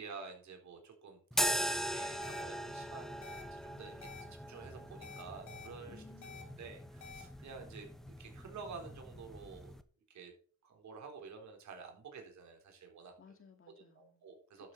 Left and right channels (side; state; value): both; normal; correlation 0.54